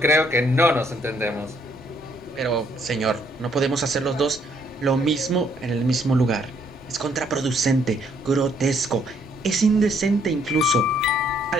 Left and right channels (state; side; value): normal; both; correlation 0.68